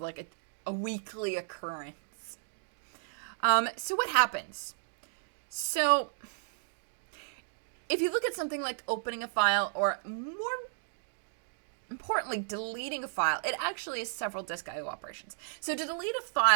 like a weekly occurrence. So what happens? So if you look at something like opening a file, or more importantly, deleting a file, it actually is several disk I/O operations. So to delete a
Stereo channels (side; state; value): left; silent; digital silence